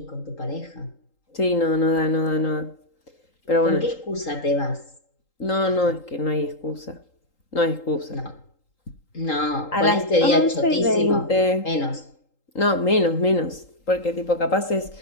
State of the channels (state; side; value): late; right; 3.8 ms